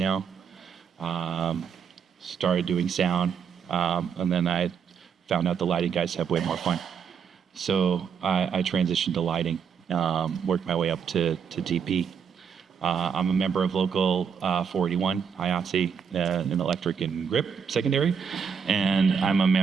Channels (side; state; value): left; quieter; 6.7 dB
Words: Started doing sound, and then I found out the lighting guys have way more fun. So I transitioned to lighting, worked my way up to DP. I'm a member of Local 481, IATSE, in electric and grip secondary, and I'm a